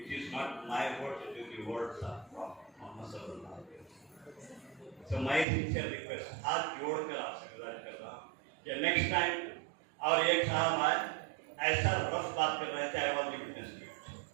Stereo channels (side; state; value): left; drops out; at 5.5 s